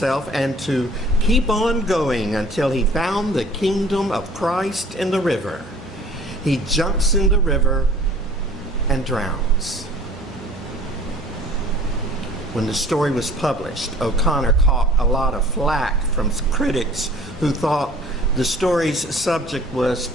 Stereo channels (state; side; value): normal; both; correlation 0.50